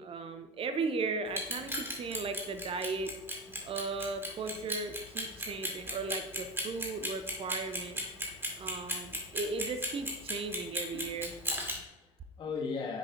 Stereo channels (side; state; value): both; normal; correlation 0.21